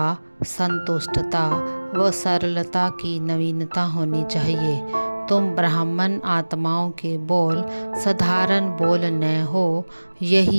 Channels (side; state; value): both; inverted; correlation -1.00